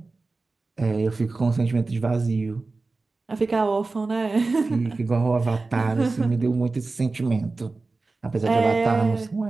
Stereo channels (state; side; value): quieter; left; 3.6 dB